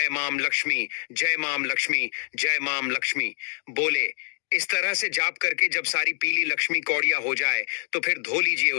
माम लक्ष्मी जय माम लक्ष्मी जय माम लक्ष्मी बोले। इस तरह से जाप करके जब सारी पीली लक्ष्मी कौड़िया हो जाए तो फिर धो लीजिए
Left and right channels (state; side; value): silent; right; digital silence